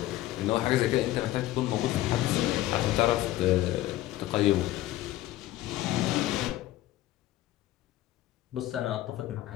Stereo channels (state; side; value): quieter; right; 15.3 dB